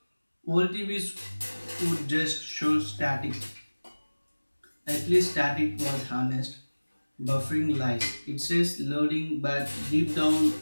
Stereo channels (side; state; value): both; inverted; correlation -1.00